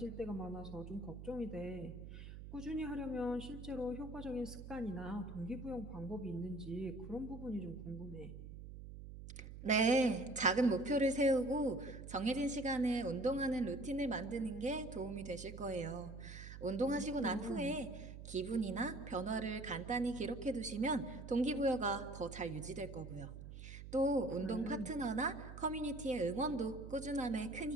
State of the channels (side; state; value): right; noise; hum, 11 dB below the sound